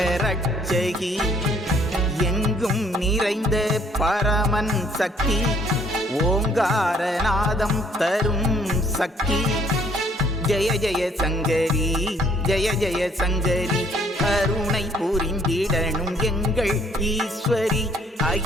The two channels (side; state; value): both; normal; correlation 0.62